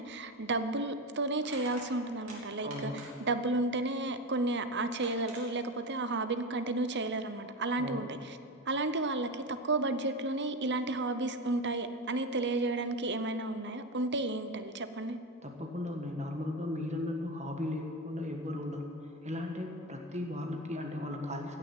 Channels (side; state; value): both; normal; correlation 0.19